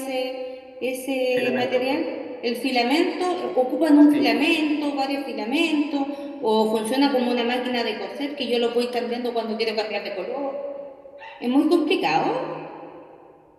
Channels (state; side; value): identical; both; correlation 1.00